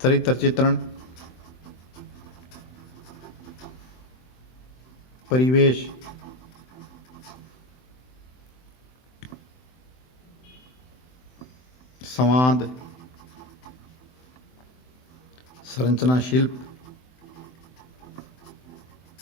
चरित्र चित्रण, परिवेश, संवाद, संरचना, शिल्प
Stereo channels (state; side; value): late; right; 23 ms